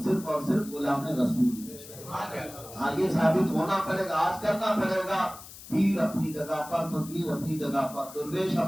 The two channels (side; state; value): left; noise; hiss, 16 dB below the sound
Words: صرف اور صرف غلام رسول ہے۔ ہاں، یہ ثابت ہونا پڑے گا، آج کرنا پڑے گا۔ پیر اپنی جگہ پر، فقیر اپنی جگہ پر، درویش